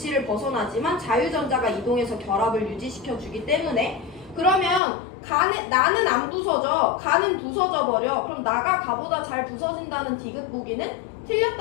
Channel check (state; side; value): drops out; right; at 4.8 s